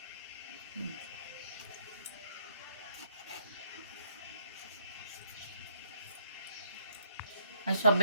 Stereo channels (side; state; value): both; inverted; correlation -0.69